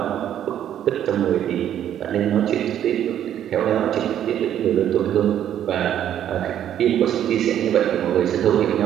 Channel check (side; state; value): left; quieter; 10.6 dB